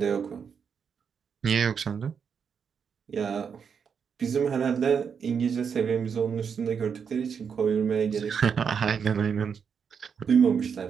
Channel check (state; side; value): quieter; left; 6.7 dB